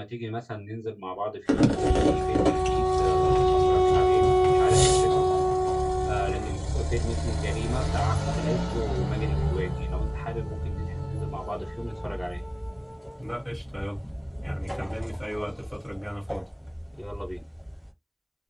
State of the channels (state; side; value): identical; both; correlation 1.00